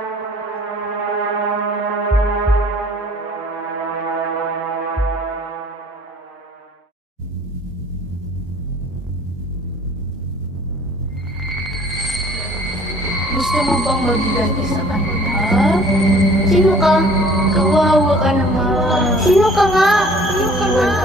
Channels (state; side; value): normal; both; correlation 0.53